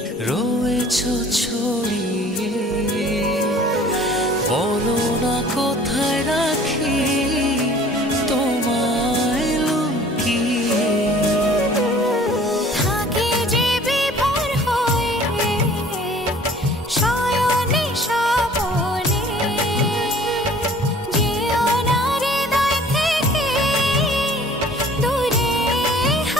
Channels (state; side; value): normal; both; correlation 0.51